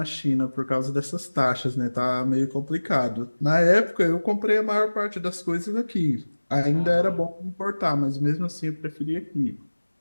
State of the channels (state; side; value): inverted; both; correlation -1.00